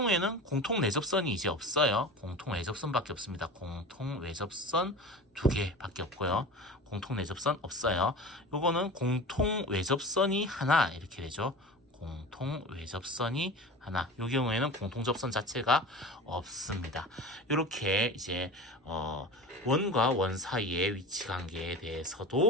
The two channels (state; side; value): normal; both; correlation 0.33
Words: 공통 내접선이 이제 없어요. 공통 외접선밖에 없습니다. 공통 외접선 2개밖에 없고요. 공통 내접선 없어요. 요거는 공통 외접선이 하나 이렇게 되죠. 공통 외접선이 하나. 요 경우에는 공통 접선 자체가 없습니다. 이렇게 이제 원과 원 사이의 위치 관계에